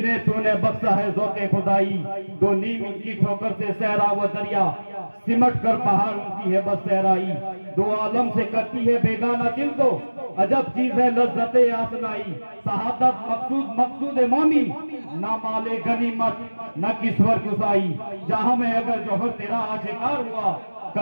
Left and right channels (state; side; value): inverted; both; correlation -1.00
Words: तूने बख्शा है ज़ौक़े खुदाई, दो नीम की ठोकर से सहरा व दरिया, सिमट कर पहाड़ उनकी है बस सहराई। दो आलम से करती है बेगाना दिल को, अजब चीज है लज्जते आसनाई। शहादत मकसूद मकसूद मौमी, ना माले गनीमत न किस्वर गुसाई। जहां में अगर जौहर तेरा आशिकार हुआ,